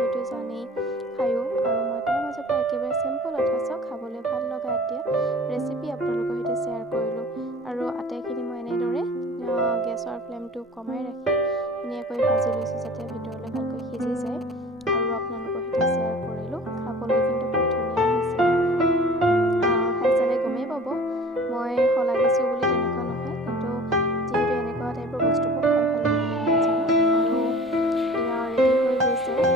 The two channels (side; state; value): both; normal; correlation 0.44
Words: জানেই খায়ো আৰু মই তাৰ মাজৰ পৰা একেবাৰে চিম্পল অথচ খাবলৈ ভাল লগা এতিয়া ৰেচিপি আপোনালোকৰ সৈতে শ্বেয়াৰ কৰিলোঁ আৰু আটাইখিনি মই এনেদৰে গেছৰ ফ্লেমটো কমাই ৰাখি ধুনীয়াকৈ ভাজি লৈছোঁ যাতে ভিতৰলৈ ভালকৈ সিজি যায় আৰু আপোনালোকৰ সৈতে শ্বেয়াৰ কৰিলোঁ খাবলৈ কিন্তু খুব ধুনীয়া হৈছিলে খাই চালে গমেই পাব মই শলাগিছোঁ বুলি তেনেকুৱা নহয় কিন্তু যিহেতু এনেকুৱা টাইপৰ বস্তুবোৰ খাই ভাল লাগে নাজানো আৰু এয়া ৰেডি হৈ গৈছে